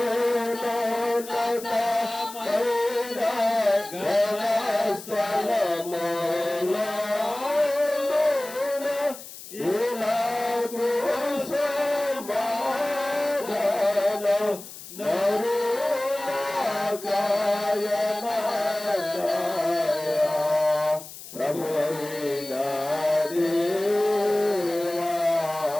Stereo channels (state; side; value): noise; left; hiss, 14 dB below the sound